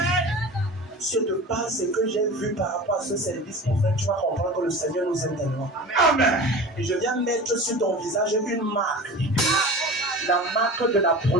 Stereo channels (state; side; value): normal; both; correlation 0.35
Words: Si je te parle ce que j'ai vu par rapport à ce service, mon frère, tu vas comprendre que le Seigneur nous aime tellement. Amen. Et je viens mettre sur ton visage une marque. La marque de la